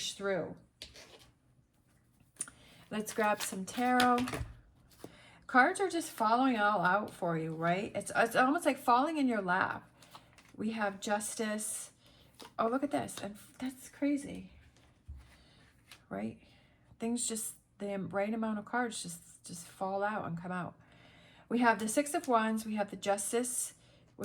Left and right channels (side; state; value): both; identical; correlation 1.00